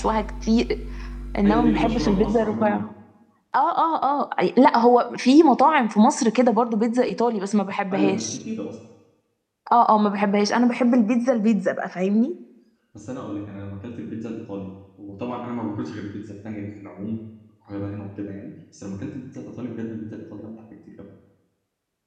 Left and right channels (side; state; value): both; identical; correlation 1.00